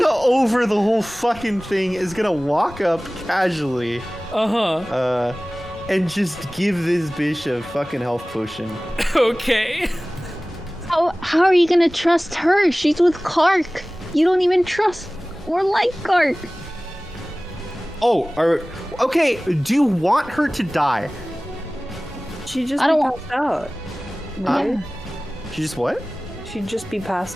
over the whole fucking thing, is gonna walk up casually. And just give this bitch a fucking health potion. Okay. How are you gonna trust her? She's with Clark. You don't even trust or like Clark. Oh, okay, do you want her to die? She'd just I don't be want- passed out. Right? She just what? She'd just be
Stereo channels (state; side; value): normal; both; correlation 0.98